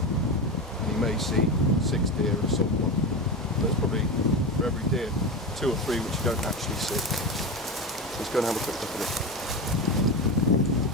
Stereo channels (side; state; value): both; normal; correlation 0.21